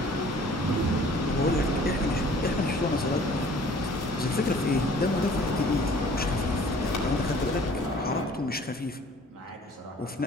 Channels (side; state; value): both; normal; correlation 0.52